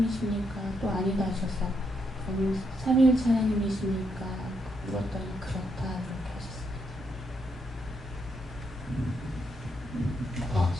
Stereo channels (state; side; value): normal; both; correlation 0.78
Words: 또 아니다 하셔서 그럼 삼위일체 하나님이십니까? 물었더니 그렇다 이렇게 하셨습니다.